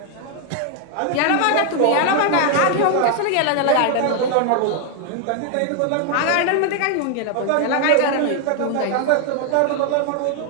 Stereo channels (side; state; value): both; different; correlation 0.00